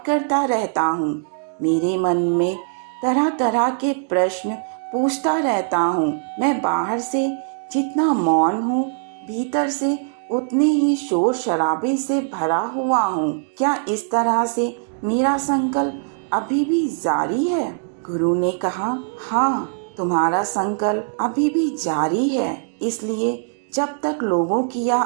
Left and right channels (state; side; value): silent; left; digital silence